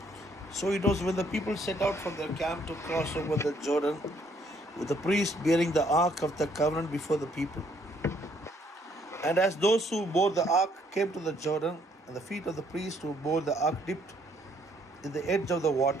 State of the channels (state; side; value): normal; both; correlation 0.67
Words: So it was when the people set out from their camp to cross over the Jordan, with the priest bearing the ark of the covenant before the people. And as those who bore the ark came to the Jordan, and the feet of the priest who bore the ark dipped in the edge of the